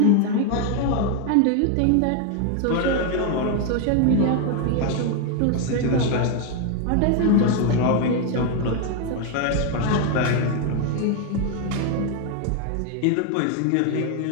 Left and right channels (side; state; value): both; different; correlation 0.01